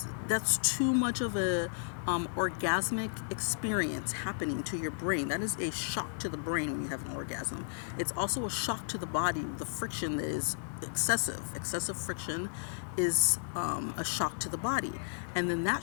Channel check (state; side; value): silent; right; digital silence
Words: that's too much of a orgasmic experience happening to your brain. That is a shock to the brain when you have an orgasm. It's also a shock to the body. The friction that is excessive. Excessive friction is a shock to the body. And then that